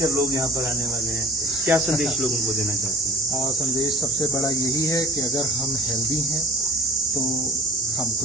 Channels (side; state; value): both; normal; correlation 0.46